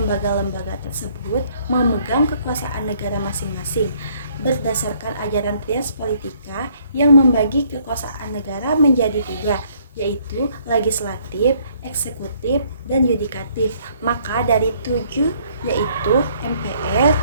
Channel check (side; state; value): both; inverted; correlation -0.64